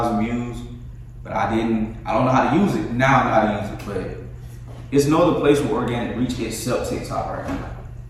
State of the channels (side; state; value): both; identical; correlation 1.00